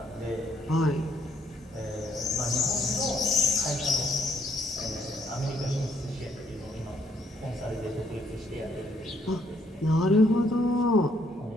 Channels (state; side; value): normal; both; correlation 0.69